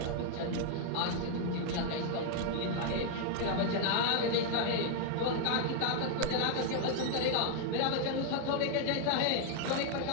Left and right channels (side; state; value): both; different; correlation 0.00